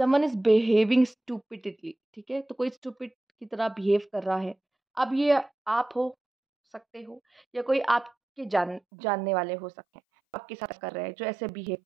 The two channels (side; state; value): left; drops out; at 8.8 s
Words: इज़ बिहेविंग स्टूपिडली, ठीक है? तो कोई स्टूपिड की तरह बिहेव कर रहा है। अब ये आप हो सकते हो या कोई आपके जानने वाले हो सकते हैं, आपके साथ कर रहे हैं, जो ऐसे बिहेव